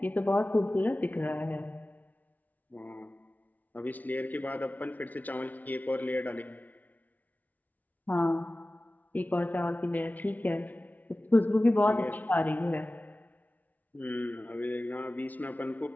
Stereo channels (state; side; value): late; right; 0.077 ms